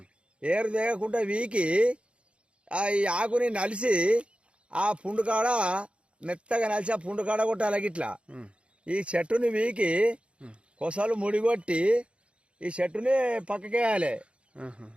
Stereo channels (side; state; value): left; late; 0.059 ms